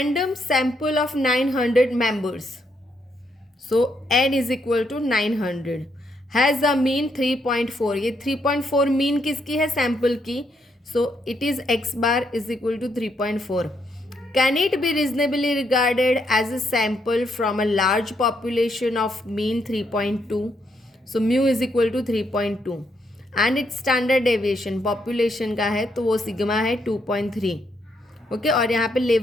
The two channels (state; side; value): normal; both; correlation 0.76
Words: sample of 900 members. So n is equal to 900 has a mean 3.4. ये 3.4 मीन किसकी है? सैम्पल की. So it is x bar is equal to 3.4. Can it be reasonably regarded as a sample from a large population of mean 3.2? So mu is equal to 3.2. And it's standard deviation population का है तो वो सिग्मा है 2.3. ओके, और यहाँ पे